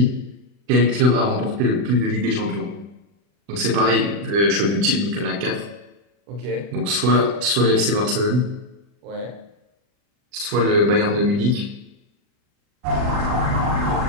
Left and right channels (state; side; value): late; left; 40 ms